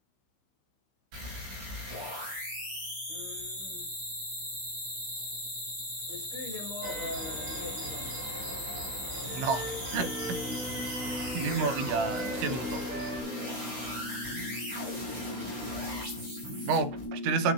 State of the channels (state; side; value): late; left; 15 ms